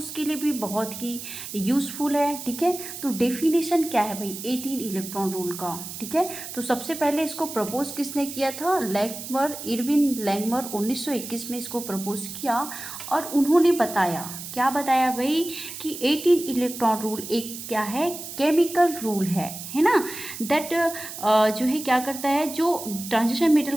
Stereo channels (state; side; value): noise; right; hiss, 10 dB below the sound